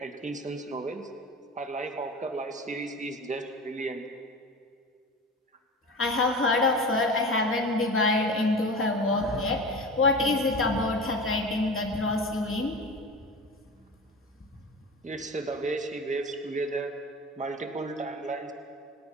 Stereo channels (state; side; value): normal; both; correlation 0.32